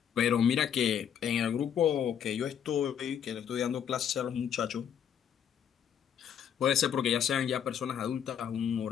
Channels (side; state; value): right; quieter; 8.7 dB